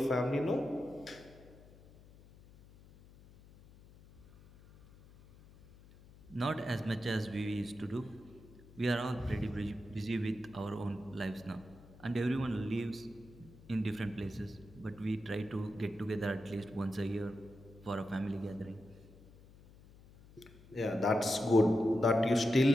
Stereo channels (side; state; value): left; noise; hum, 22 dB below the sound